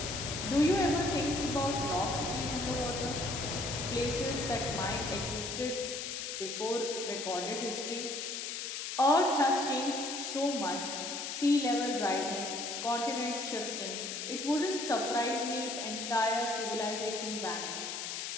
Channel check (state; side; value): noise; left; hiss, 5 dB below the sound